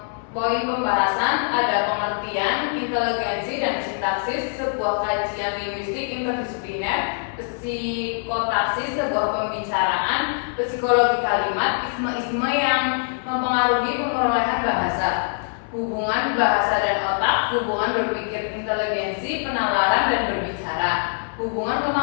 Poin pembahasan ada pengertian, inteligensi, dan sintaksis sebuah kajian linguistik interdisipliner, psikotaksis sebuah pembicaraan, psikologi kalimat, isme-isme yang mempengaruhi perolehan bahasa, hubungan bahasa dan otak, hubungan berpikir inteligensi, penalaran dan berbicara, hubungan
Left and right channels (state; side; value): silent; right; 63 dB below the other